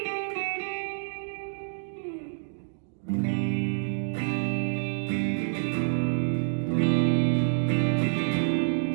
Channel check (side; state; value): left; silent; digital silence